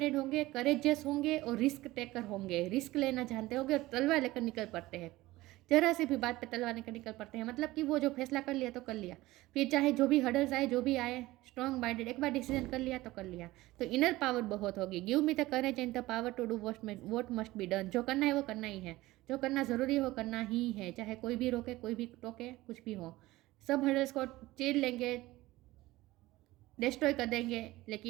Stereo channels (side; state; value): left; quieter; 18.2 dB